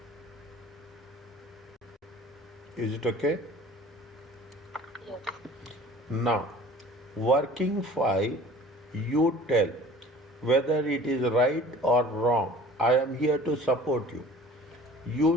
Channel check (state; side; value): normal; both; correlation 0.46